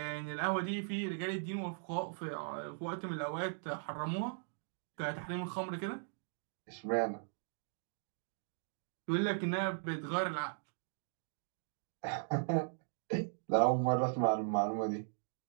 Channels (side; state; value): left; silent; digital silence